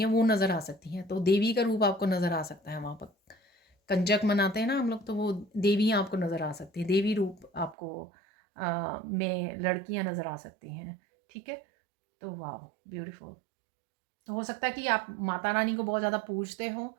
वो नज़र आ सकती हैं, तो देवी का रूप आपको नज़र आ सकता है वहाँ पर। कंजक मनाते हैं ना हम लोग, तो वो देवियाँ आपको नज़र आ सकती हैं, देवी रूप आपको में लड़कियाँ नज़र आ सकती हैं, ठीक है? तो वाओ! ब्यूटीफुल। तो हो सकता है कि आप माता रानी को बहुत ज़्यादा पूजते हो,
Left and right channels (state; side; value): drops out; left; at 7.8 s